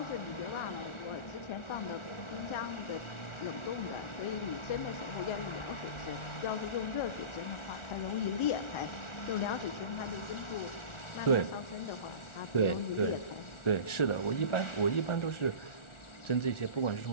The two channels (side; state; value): right; late; 1.4 ms